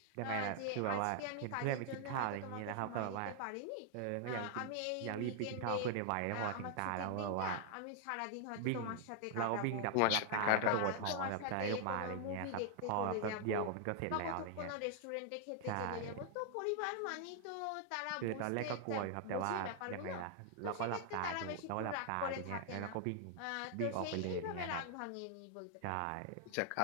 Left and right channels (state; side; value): different; both; correlation 0.00